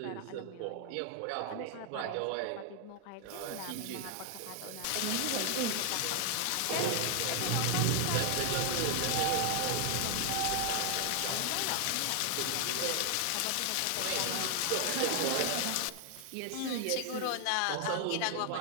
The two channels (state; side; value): different; both; correlation 0.00